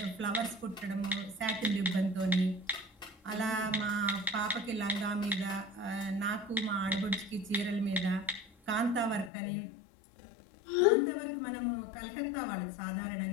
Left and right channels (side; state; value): right; drops out; at 9.3 s